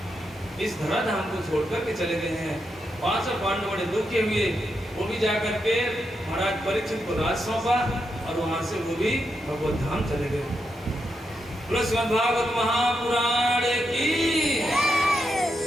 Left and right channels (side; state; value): both; normal; correlation 0.84